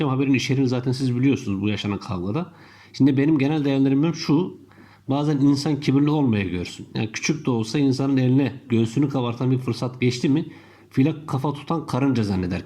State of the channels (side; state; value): both; identical; correlation 1.00